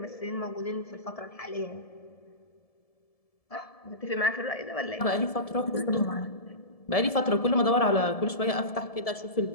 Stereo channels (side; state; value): right; late; 1.7 ms